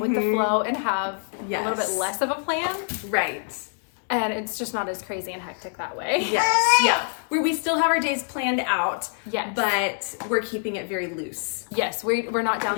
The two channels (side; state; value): right; silent; digital silence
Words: the flow and have a little bit less of a plan. Right. And it's just not as crazy and hectic that way. Yes, yeah. Where we still have our days planned out, yes, but we're keeping it very loose. Yes, we're not down